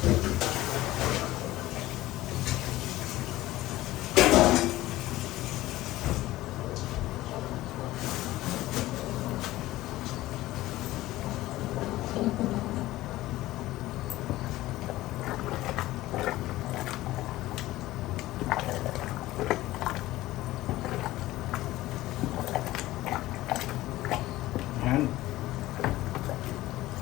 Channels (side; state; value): right; quieter; 16.7 dB